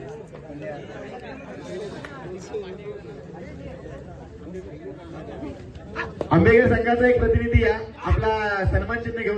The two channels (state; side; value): identical; both; correlation 1.00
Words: आंबेकर संघाचा एक प्रतिनिधी या आपला सन्मान चिन्ह